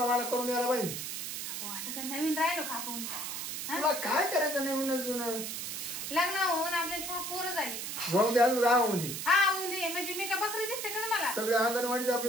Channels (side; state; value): right; noise; hiss, 5 dB below the sound